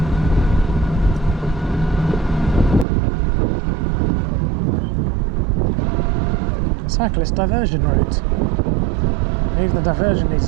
Cyclist diversion route. Even the diversion needs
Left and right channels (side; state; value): left; drops out; at 2.9 s